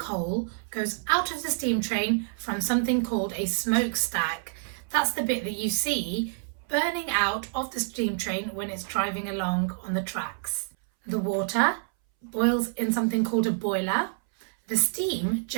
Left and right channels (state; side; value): silent; left; 60 dB below the other